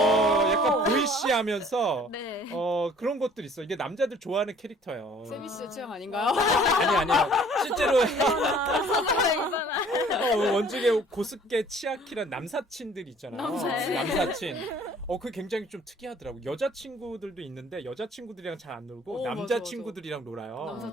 약간 보이시하면서 네. 그런 것들 있어. 이게 남자들 좋아하는 캐릭터예요. 세미 씨의 취향 아닌가요? 아니요. 실제로 이바나. 원중에 고스케 치아키란 남사친들 있잖아요. 남사친. 남사친. 그게 굉장히 좀 특이하더라고. 여자친구들도 있는데 여자친구들이랑 잘 안 놀고 맞아, 남자친구들이랑 놀아요.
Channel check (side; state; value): both; normal; correlation 0.54